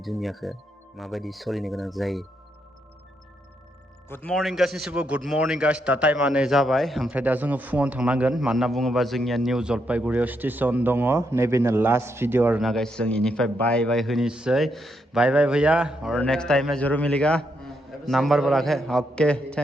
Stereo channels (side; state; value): both; normal; correlation 0.79